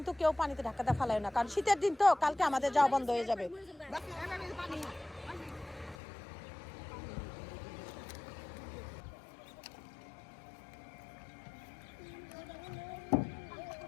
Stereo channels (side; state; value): right; drops out; at 6.0 s